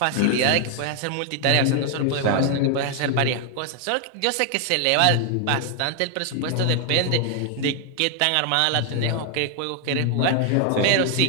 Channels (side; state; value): both; different; correlation 0.00